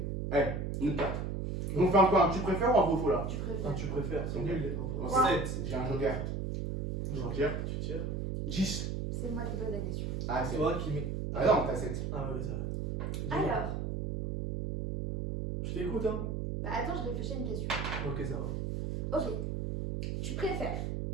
Allez, une carte. On fait un quoi? Tu préfères ou un vrai ou faux là? Tu Ah, préfères. tu préfères, c'est Ok. nul les Bon, pauvres. Ouais. 7. J'ai un joker. Joker. Tu tires. 10. C'est moi qui pose la question. Ah, c'est Toi qui mets. Ah non, t'as 7. Ah ouais, ça va. Dis-moi. Alors, Je t'écoute, hein. bah attends, je réfléchis à une question. Ok, ça va. Ok. Tu préfères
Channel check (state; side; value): noise; right; hum, 2 dB below the sound